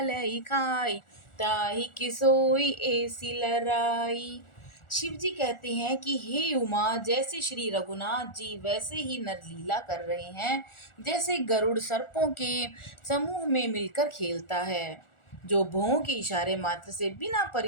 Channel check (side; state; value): right; late; 1.4 ms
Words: खाई, ताहि किसोई ऐसी लराई। शिव जी कहते हैं कि हे उमा, जैसे श्री रघुनाथ जी वैसे ही नरलीला कर रहे हैं, जैसे गरुड़ सर्पों के समूह में मिलकर खेलता है, जो भौं के इशारे मात्र से बिना